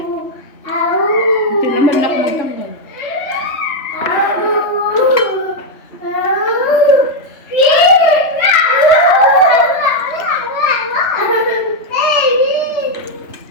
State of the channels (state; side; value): late; right; 3.3 ms